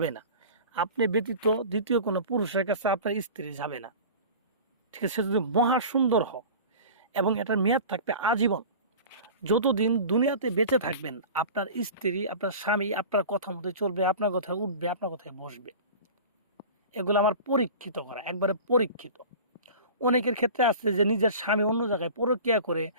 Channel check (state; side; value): inverted; both; correlation -0.37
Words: না, আপনি ব্যতীত দ্বিতীয় কোনো পুরুষের কাছে আপনার স্ত্রী যাবে না। ঠিক আছে? সে যদি মহা সুন্দর হয় এবং এটার মেয়াদ থাকবে আজীবন। যতদিন দুনিয়াতে বেঁচে থাকবেন আপনার স্ত্রী, আপনার স্বামী আপনার কথা মতো চলবে, আপনার কথায় উঠবে, আপনার কথায় বসবে। এগুলো আমার পরীক্ষিত করা, একবারে পরীক্ষিত। অনেকের ক্ষেত্রে আছে যে নিজের স্বামী অন্য জায়গায় পরক্রিয়া করে